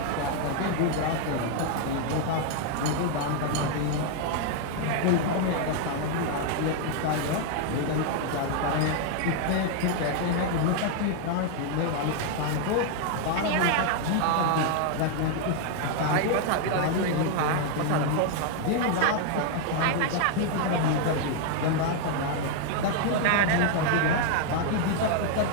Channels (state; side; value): different; both; correlation 0.00